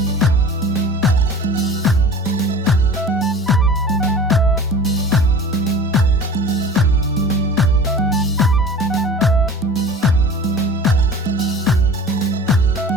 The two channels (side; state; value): both; normal; correlation 0.40